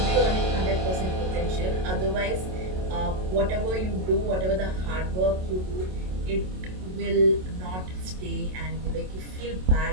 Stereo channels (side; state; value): left; late; 27 ms